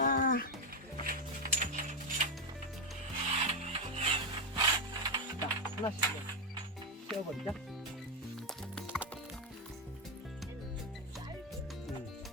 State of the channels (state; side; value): normal; both; correlation 0.06